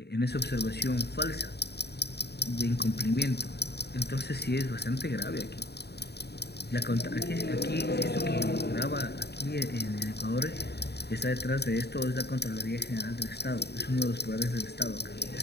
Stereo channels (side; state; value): right; late; 0.48 ms